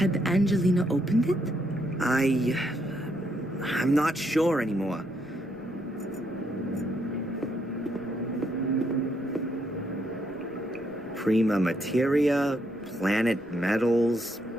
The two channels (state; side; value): noise; right; rumble, 30 dB below the sound